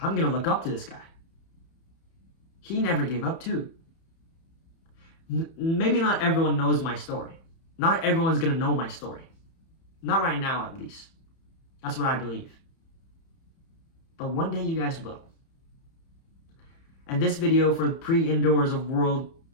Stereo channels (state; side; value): late; right; 30 ms